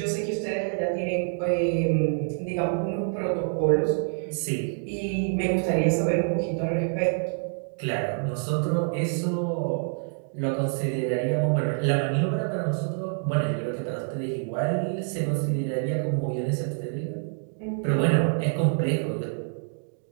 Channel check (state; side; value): silent; left; 60 dB below the other